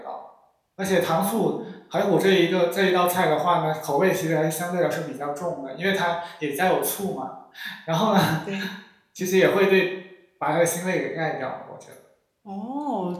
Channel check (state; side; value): identical; both; correlation 1.00